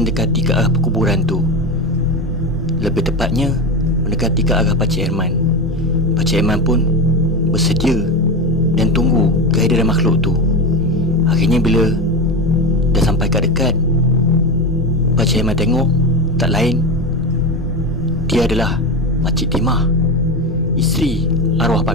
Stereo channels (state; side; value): normal; both; correlation 0.20